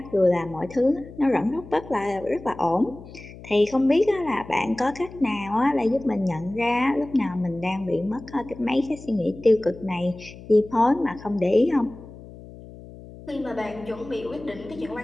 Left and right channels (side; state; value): left; noise; hum, 17 dB below the sound